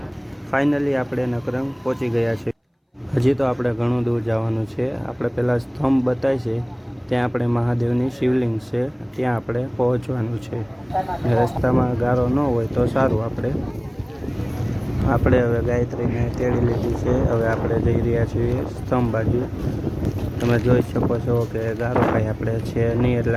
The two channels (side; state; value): both; identical; correlation 1.00